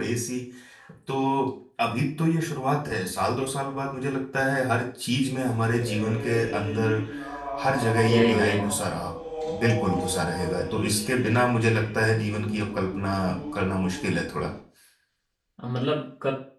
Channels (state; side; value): identical; both; correlation 1.00